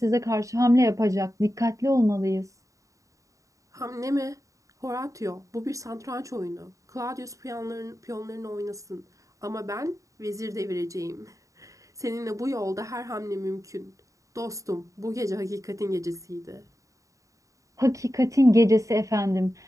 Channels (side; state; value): left; late; 0.16 ms